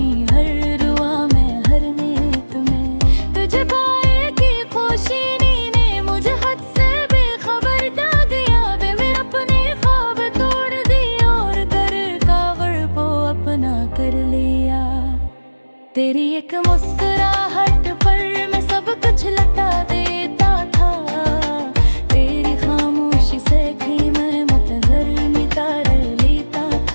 हर दुआ में, हर नीयत में। तुझे पाए की खुशी ने मुझे हद से बेखबर डाल दिया। वे मेरे अपने ख्वाब तोड़ दिए और कर कावड़ को अपना कर लिया। तेरी एक मुस्कुराहट पर मैं सब कुछ लटा देता था, तेरी खामोशी से भी मैं मुतहर मिटार लेता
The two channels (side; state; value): both; inverted; correlation -1.00